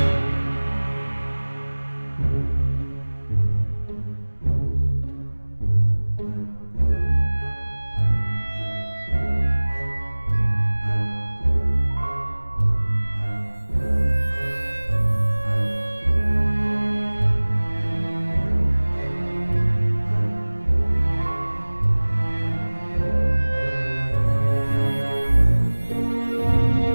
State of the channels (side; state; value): both; inverted; correlation -1.00